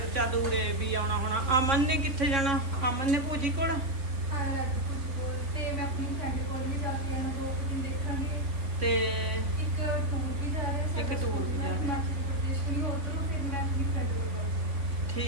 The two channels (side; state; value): left; late; 3.5 ms